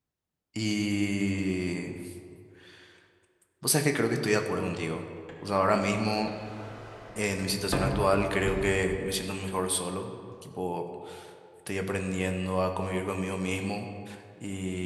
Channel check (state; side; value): identical; both; correlation 1.00